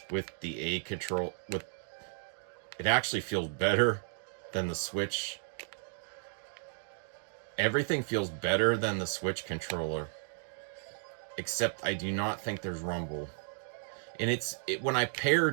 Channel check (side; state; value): left; silent; digital silence